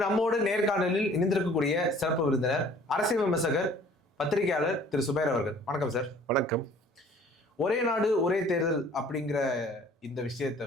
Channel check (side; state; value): both; normal; correlation 0.53